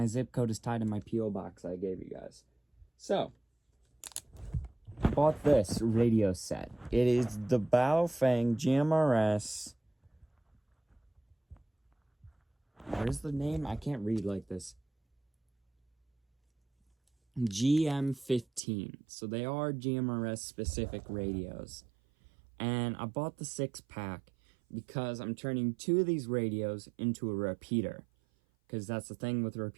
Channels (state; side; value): drops out; left; at 18.6 s